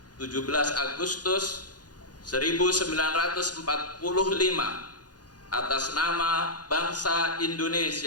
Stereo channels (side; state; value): right; late; 0.69 ms